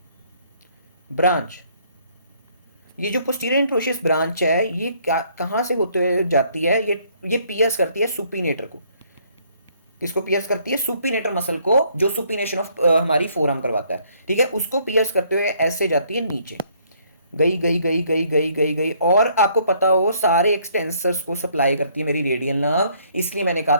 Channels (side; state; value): both; inverted; correlation -0.65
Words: ब्रांच। ये जो पोस्टीरियर इंट्रोशियस ब्रांच है ये कहां से होते हुए जाती है, ये पियर्स करती है सुपीनेटर को, किसको पियर्स करती है, सुपीनेटर मसल को, जो सुपीनेशन ऑफ हमारी फोरआर्म करवाता है, ठीक है, उसको पियर्स करते हुए ऐसे जाती है नीचे, गई गई गई गई गई गई गई, और आपको पता हो सारे एक्सटेंसर्स को सप्लाई करती है मेरी रेडियल नर्व, इसलिए मैंने कहा